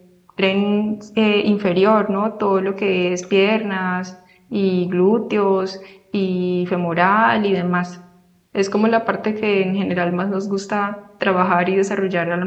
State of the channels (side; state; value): both; identical; correlation 1.00